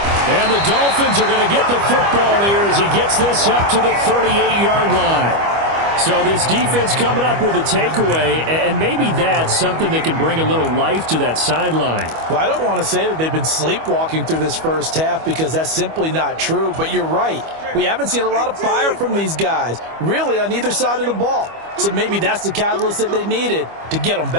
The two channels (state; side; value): late; left; 25 ms